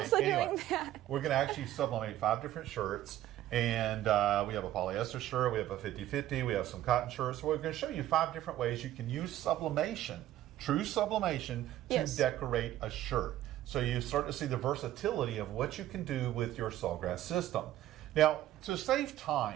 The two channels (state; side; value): quieter; left; 13.5 dB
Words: anyway, doing that. We're going to actually sublimate 5 different shirts. And we have a polyester shirt, we have a 50-50, we have some cotton shirts. So we're going to show you 5 different ways you can use sublimation, true sublimation, to decorate a shirt. So you start to see the versatility of what you can do with your Sawgrass system. Now, to save